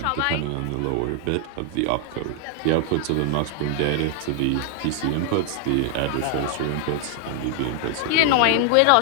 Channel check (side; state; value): both; different; correlation 0.00